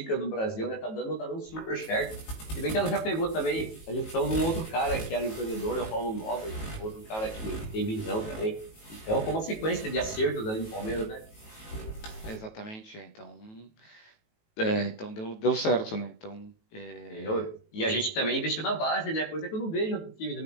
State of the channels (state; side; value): late; right; 18 ms